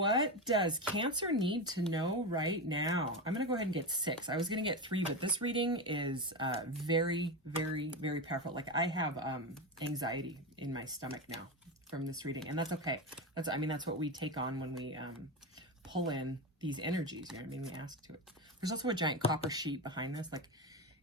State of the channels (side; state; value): both; normal; correlation 0.17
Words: does Cancer need to know right now? I'm going to go ahead and get 6. I was going to get 3, but this reading is very, very, very powerful. Like I have anxiety in my stomach now from this reading, and that's okay. I mean, that's what we take on when we pull in these energies. You know what I mean? We ask to it. There's also a giant copper sheet behind this. Like